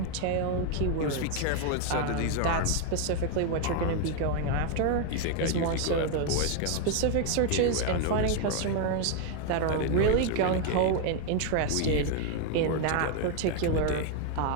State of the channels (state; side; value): different; both; correlation 0.01